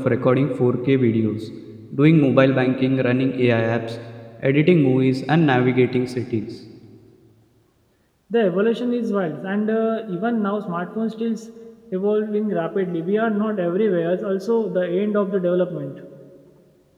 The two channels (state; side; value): identical; both; correlation 1.00